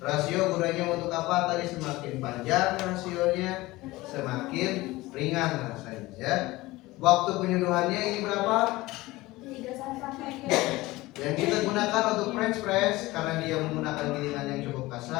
gunanya untuk apa? Tadi semakin panjang rasionya, semakin ringan rasanya ya. Waktu penyeduhannya ini berapa? 3 Yang kita gunakan untuk French press karena dia menggunakan gilingan yang cukup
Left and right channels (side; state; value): right; quieter; 19.5 dB